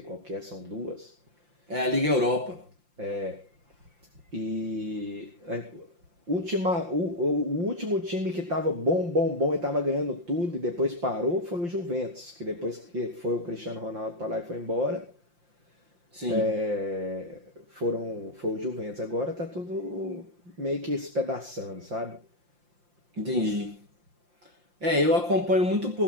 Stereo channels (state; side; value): late; left; 5.7 ms